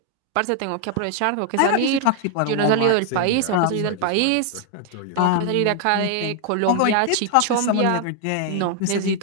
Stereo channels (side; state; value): both; different; correlation 0.00